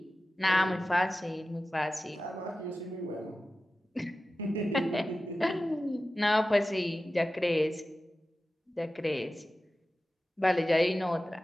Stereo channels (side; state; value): both; normal; correlation 0.94